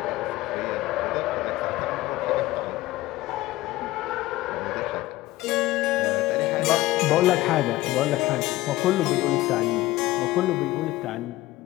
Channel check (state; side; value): quieter; right; 17.5 dB